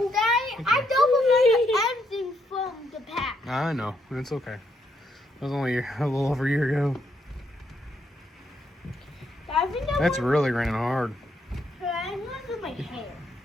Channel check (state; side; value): normal; both; correlation 0.76